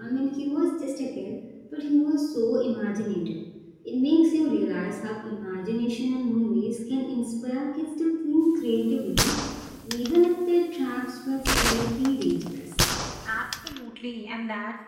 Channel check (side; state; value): both; identical; correlation 1.00